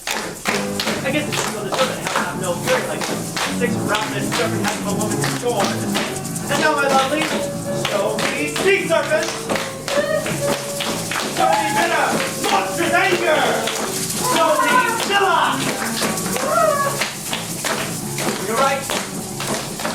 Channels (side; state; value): both; identical; correlation 1.00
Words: I guess it's true the serpent has to have no fury like this. Six ravenous serpent has no woman to scorn. And now, my lovely, show me sea serpent! Show me bitter, monstrous anger! Show me Scylla! You're right.